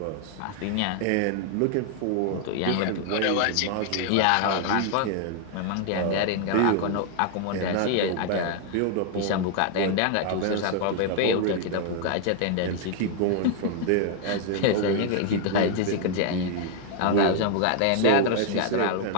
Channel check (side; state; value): both; different; correlation 0.00